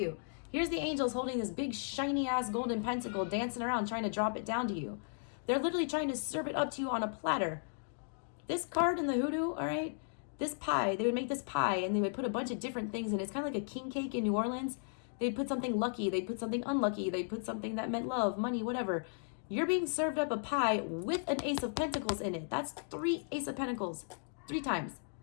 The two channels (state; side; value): silent; right; digital silence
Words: Here's the angels holding this big shiny ass golden pentacle dancing around trying to drop it down to you. They're literally trying to serve it up to you on a platter. This card in the hoodoo, all right, this pie, they would make this pie and they would put a bunch of different things in it. It's kind of like a king cake in New Orleans. They'd put something lucky, they'd put something unlucky, they'd put something that meant love, money, whatever. You're being served up a pie with an Ace of Pentacles in it. That's 3 Ace of Pentacles. 3 times.